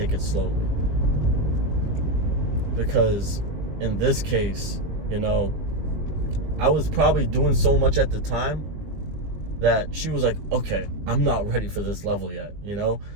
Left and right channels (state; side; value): late; left; 19 ms